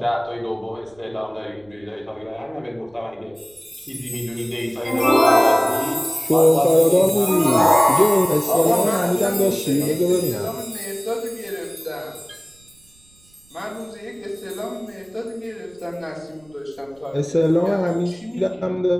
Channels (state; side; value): noise; right; rumble, 30 dB below the sound